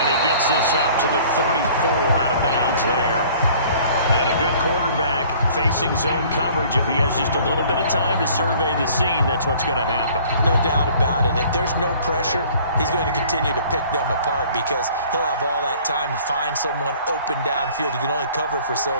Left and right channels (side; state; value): both; inverted; correlation -0.52